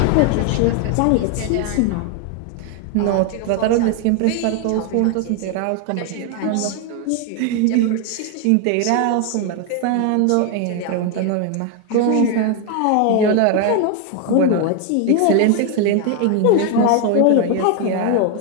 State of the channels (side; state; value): both; different; correlation 0.01